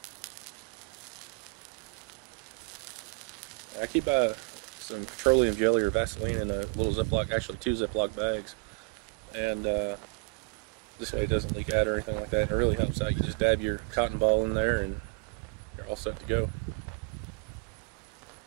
I keep some petroleum jelly or Vaseline in a little Ziploc, actually 2 Ziploc bags, and this way it doesn't leak out or anything like that, and it really helps out. You just dab your cotton ball in there and you're all set to go.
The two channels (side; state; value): left; quieter; 32.0 dB